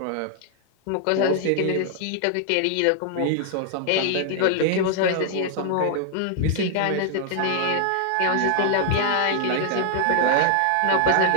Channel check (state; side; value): different; both; correlation 0.00